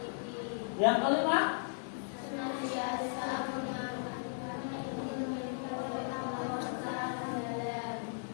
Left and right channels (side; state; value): right; silent; digital silence